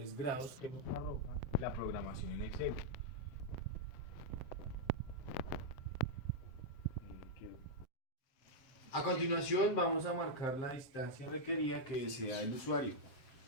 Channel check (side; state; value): right; late; 7.6 ms